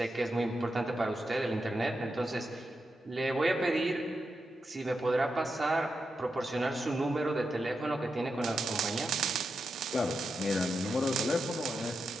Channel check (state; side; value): normal; both; correlation 0.87